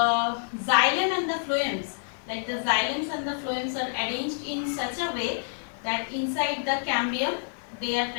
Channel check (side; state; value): right; silent; digital silence